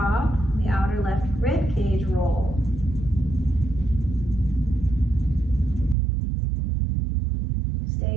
the outer left rib cage roll.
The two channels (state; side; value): drops out; left; at 6.0 s